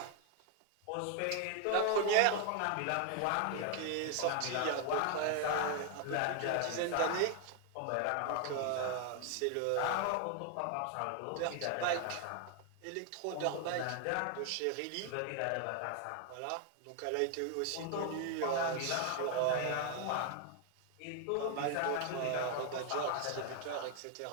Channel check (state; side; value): different; both; correlation 0.00